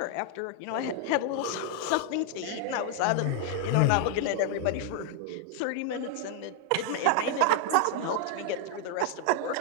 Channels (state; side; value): different; both; correlation 0.00